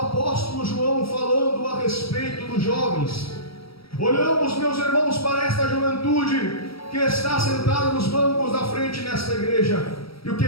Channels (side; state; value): right; late; 0.75 ms